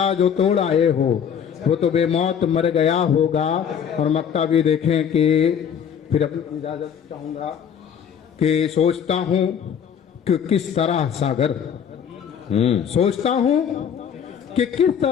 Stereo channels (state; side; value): quieter; right; 8.0 dB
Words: जो तोड़ आए हो वो तो बेमौत मर गया होगा। और मक्ता भी देखें कि फिर अपनी इजाजत चाहूंगा कि सोचता हूं कि किस तरह सागर, सोचता हूं कि किस